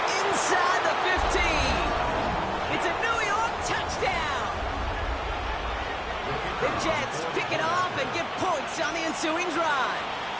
inside the 15. It's a New York touchdown. The Jets pick it off and get points on the ensuing drive.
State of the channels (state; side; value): identical; both; correlation 1.00